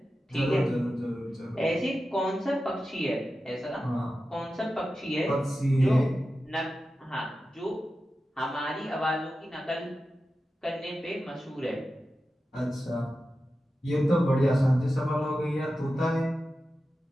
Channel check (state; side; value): normal; both; correlation 0.92